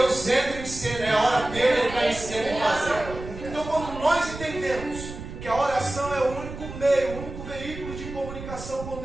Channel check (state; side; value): noise; right; rumble, 11 dB below the sound